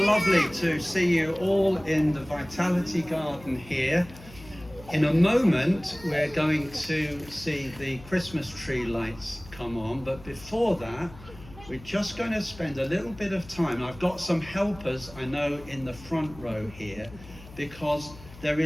lovely to see you all in the Vitality Garden here. In a moment, we're going to see the Christmas tree lights come on, but before that, we're just going to spend a little bit of time. I've got some helpers, I know, in the front row here, because there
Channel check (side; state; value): left; noise; hum, 19 dB below the sound